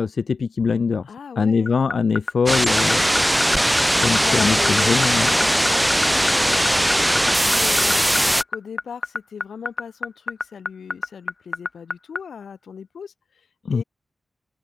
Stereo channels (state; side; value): normal; both; correlation 0.96